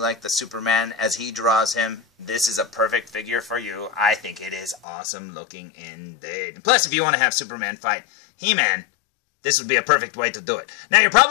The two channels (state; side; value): drops out; right; at 4.8 s